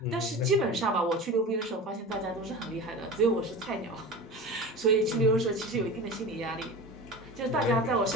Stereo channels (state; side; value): normal; both; correlation 0.31